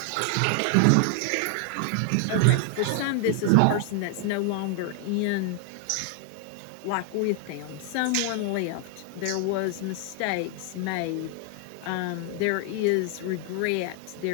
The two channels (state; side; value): different; both; correlation 0.00